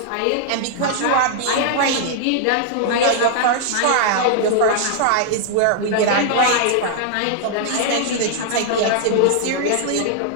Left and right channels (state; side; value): different; both; correlation -0.01